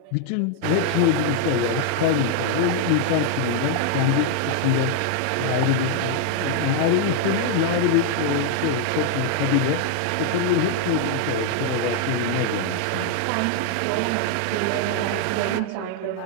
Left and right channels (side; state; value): both; different; correlation 0.00